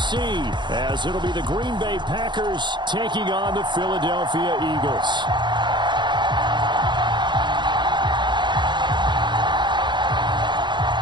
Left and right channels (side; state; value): left; late; 0.22 ms